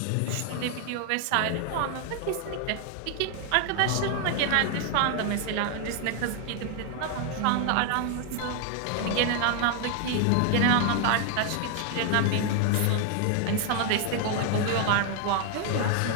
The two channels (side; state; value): both; different; correlation 0.00